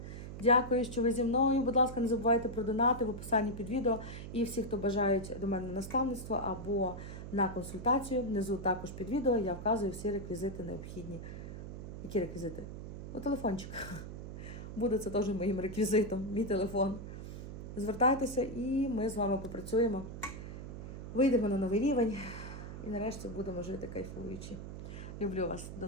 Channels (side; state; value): right; noise; hum, 9 dB below the sound